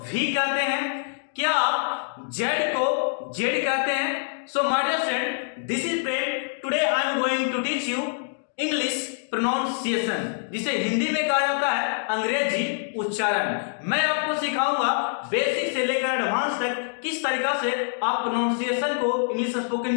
V कहते हैं? क्या आप Z को Z कहते हैं? So my dear friend, this is Prem. Today I am going to teach you English pronunciation, जिसे हिंदी में कहा जाता है अंग्रेजी उच्चारण। मैं आपको सिखाऊंगा बेसिक से लेकर एडवांस तक किस तरीका से आप प्रोनाउंसिएशन को इंग्लिश स्पोकन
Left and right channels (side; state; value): right; silent; digital silence